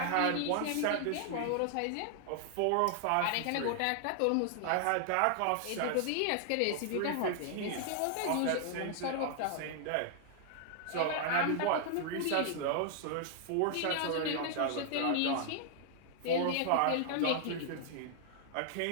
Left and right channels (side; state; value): both; different; correlation 0.00